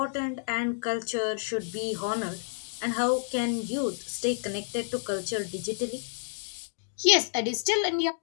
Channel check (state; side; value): silent; right; digital silence